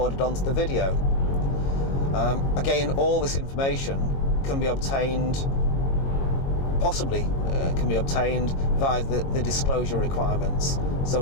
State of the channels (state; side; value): late; right; 22 ms